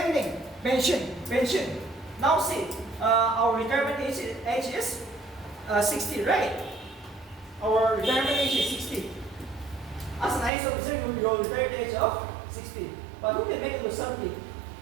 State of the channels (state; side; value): drops out; left; at 10.5 s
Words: thing. Pension. Now see, our retirement age is 60, right? Our retirement age is 60. As an IAS officer, you will retire at the age of 60. But who can make it to 70?